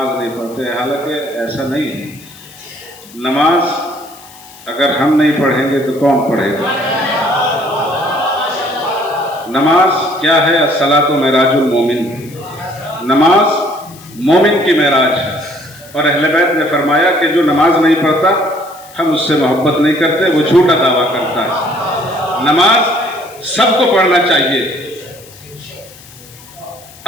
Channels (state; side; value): noise; left; hiss, 22 dB below the sound